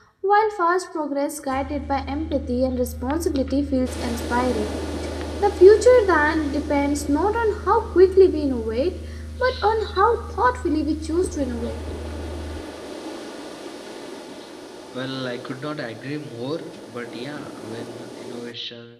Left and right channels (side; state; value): both; identical; correlation 1.00